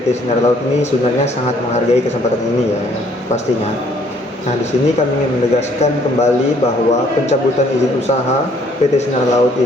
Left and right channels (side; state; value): both; normal; correlation 0.63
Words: Sinar Laut ini sebenarnya sangat menghargai kesempatan ini ya, pastinya. Nah, di sini kami ingin menegaskan kembali bahwa pencabutan izin usaha PT Sinar Laut